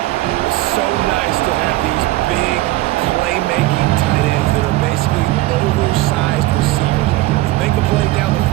It's so nice to have these big playmaking tight ends that are basically oversized receivers. Make a play down the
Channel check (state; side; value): quieter; left; 17.8 dB